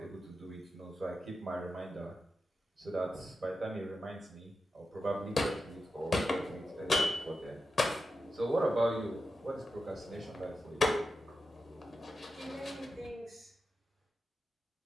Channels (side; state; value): both; normal; correlation 0.90